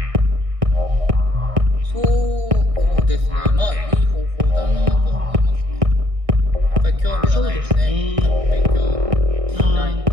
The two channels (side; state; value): left; late; 1.6 ms